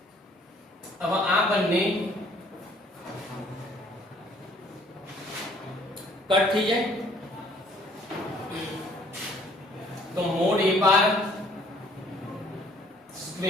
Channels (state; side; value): normal; both; correlation 0.58